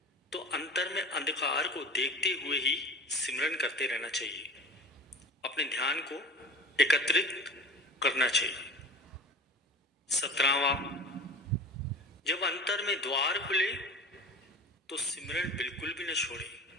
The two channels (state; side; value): normal; both; correlation 0.35